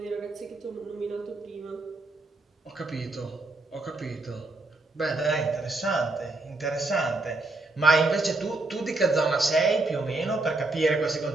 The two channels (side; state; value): left; quieter; 3.0 dB